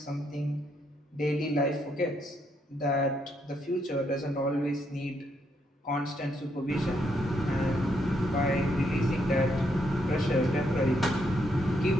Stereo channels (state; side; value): normal; both; correlation 0.76